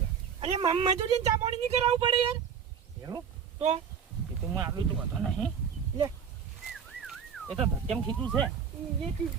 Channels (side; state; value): left; quieter; 7.3 dB